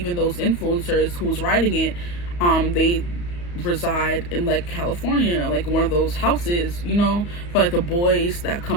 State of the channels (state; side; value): late; right; 34 ms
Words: those influencers who's writing it, they reside in like California, like one of those houses, you know, for like the boys that